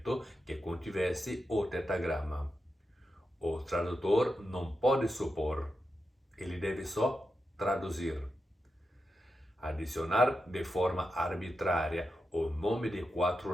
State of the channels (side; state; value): both; normal; correlation 0.88